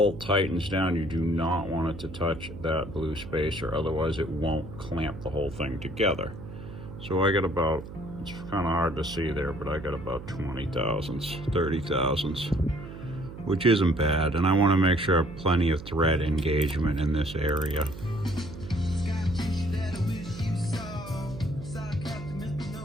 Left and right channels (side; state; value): right; noise; hum, 12 dB below the sound